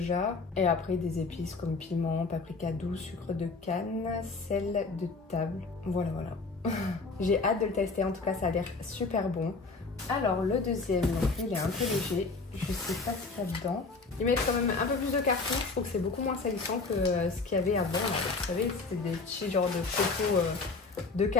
Et après des épices comme piment, paprika doux, sucre de canne, sel de table. Voilà. J'ai hâte de le tester, en tout cas ça a l'air super bon. Alors le deuxième, donc il est un peu léger, je sais pas ce qu'il y a dedans. Ils mettent quand même un peu plus de carton, je trouve que c'est beaucoup moins salissant que ce qu'il y avait avant. Là. Vous savez, c'était des petits genres de photos de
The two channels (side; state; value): right; quieter; 4.0 dB